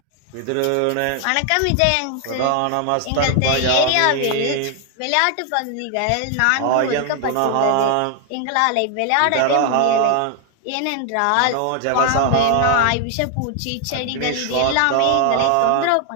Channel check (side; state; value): both; different; correlation 0.00